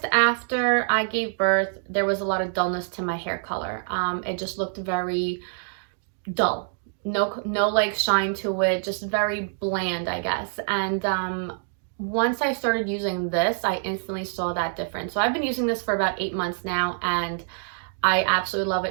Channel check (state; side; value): silent; left; digital silence